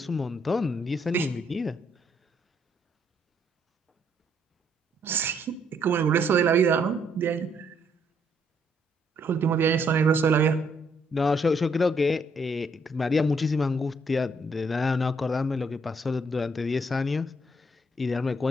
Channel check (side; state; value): both; normal; correlation 0.71